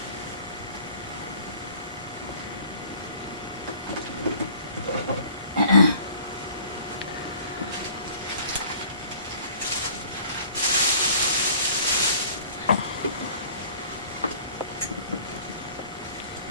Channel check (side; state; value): both; inverted; correlation -0.50